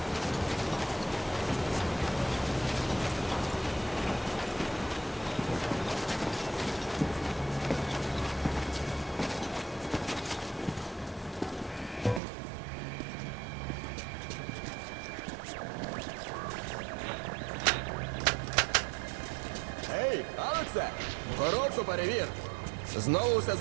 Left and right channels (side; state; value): left; drops out; at 12.2 s